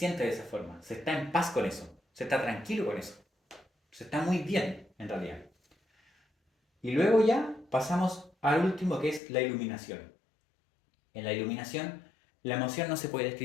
de esa forma, se está en paz con eso, se está tranquilo con eso, se está muy bien en realidad. Y luego ya pasamos al último que es la iluminación. En la iluminación la emoción no se puede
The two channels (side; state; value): right; drops out; at 9.2 s